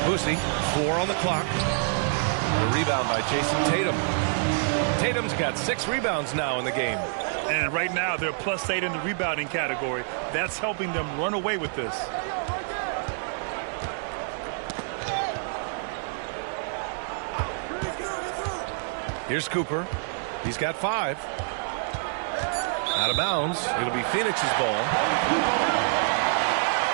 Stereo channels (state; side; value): silent; left; digital silence